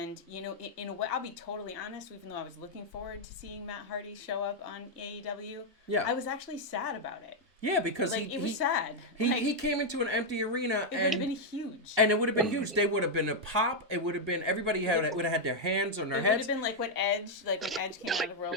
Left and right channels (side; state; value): both; normal; correlation -0.01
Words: you know, in a way, I'll be totally honest, even though I was looking forward to seeing Matt Hardy show up on AEW, I was actually sad about it. Yeah, because it was sad. He came into an empty arena. It would have been huge. And it would have been huge. They would have been a pop. It would have been, everybody would have had their hands on their heads. It would have been like when Edge came out of Royal